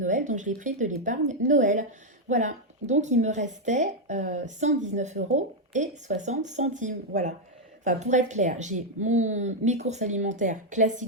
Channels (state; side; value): normal; both; correlation 0.01